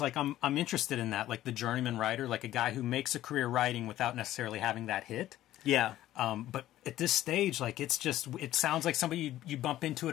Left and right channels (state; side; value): quieter; right; 13.9 dB